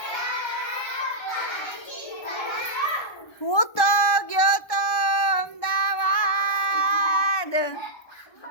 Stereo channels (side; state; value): right; late; 1.2 ms